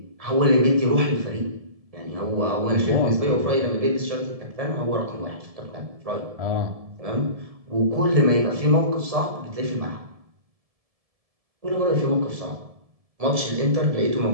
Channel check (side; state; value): left; late; 1.7 ms